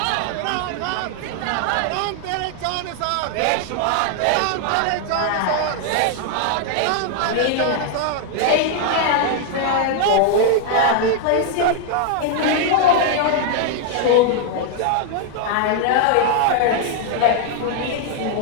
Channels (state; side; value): different; both; correlation 0.00